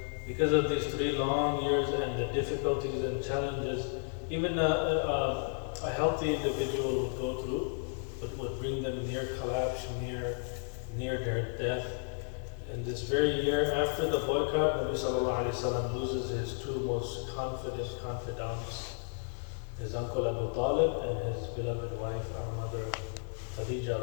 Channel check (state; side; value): silent; right; 56 dB below the other